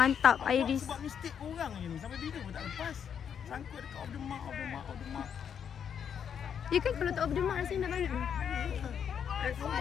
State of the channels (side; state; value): right; quieter; 7.9 dB